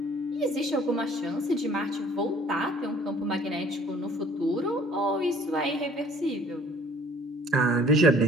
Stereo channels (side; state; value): both; normal; correlation 0.54